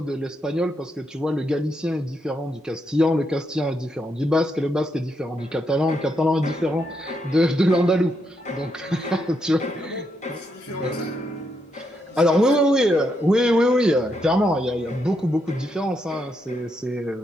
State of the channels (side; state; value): both; normal; correlation 0.80